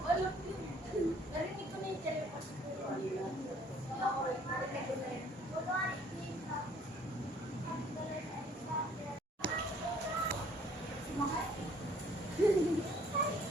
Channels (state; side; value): normal; both; correlation 0.59